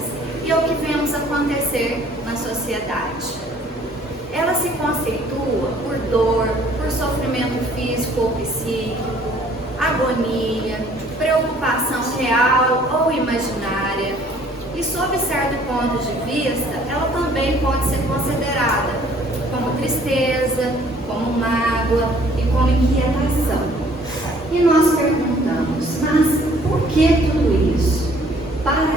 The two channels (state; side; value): normal; both; correlation 0.58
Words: e é o que vemos acontecer na sociedade. Ela se conceitua por dor, por sofrimento físico ou psíquico, agonia, preocupação real ou imaginária, e sob certo ponto de vista, ela também pode ser considerada como tristeza, como mágoa e como inquietação. E nós perguntamos, mas por que tudo isso?